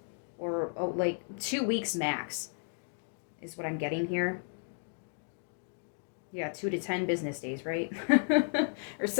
or like 2 weeks max is what I'm getting here. Yeah, 2 to 10 business days, right? Or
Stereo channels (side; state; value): right; silent; 56 dB below the other